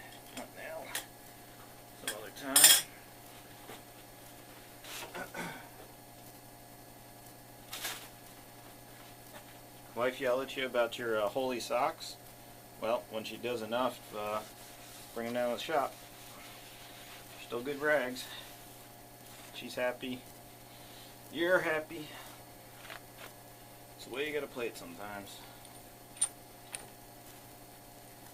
Not now. Some other time. Wife yelled at you about your holy socks. Well, when she does enough, bring them down to the shop. Still good rags. She's happy. You're happy. So the way you gotta play it sometimes.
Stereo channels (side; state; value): both; identical; correlation 1.00